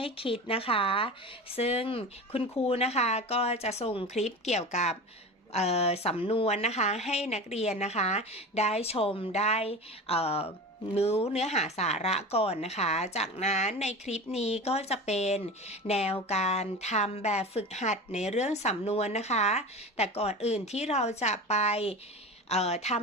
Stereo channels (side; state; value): both; normal; correlation 0.31